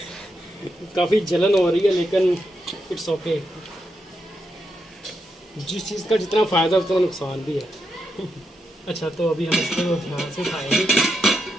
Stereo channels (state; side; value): normal; both; correlation 0.83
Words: काफ़ी जलन हो रही है, लेकिन इट्स ओके। जिस चीज़ का जितना फ़ायदा उतना नुकसान भी है। अच्छा, तो अभी हम इसको ध्यान से खाएंगे।